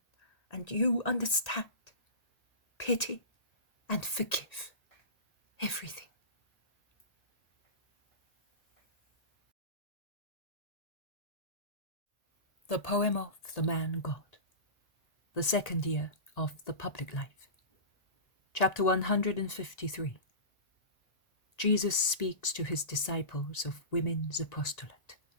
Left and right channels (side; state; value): right; late; 1.9 ms